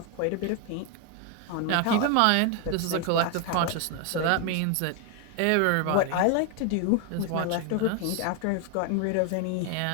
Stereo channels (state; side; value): different; both; correlation 0.01